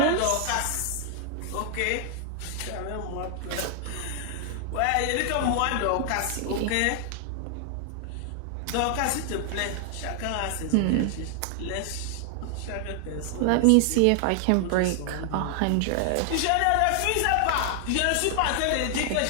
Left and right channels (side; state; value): both; different; correlation 0.00